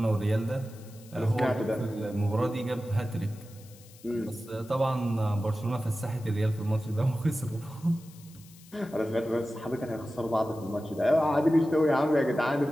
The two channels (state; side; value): noise; left; hiss, 23 dB below the sound